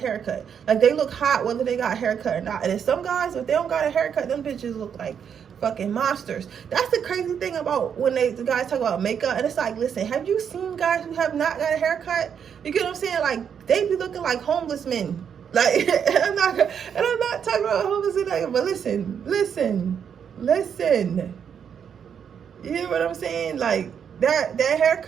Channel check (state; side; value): quieter; left; 7.7 dB